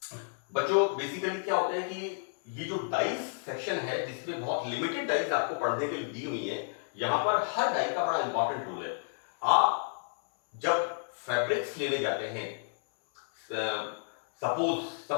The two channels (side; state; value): right; silent; 57 dB below the other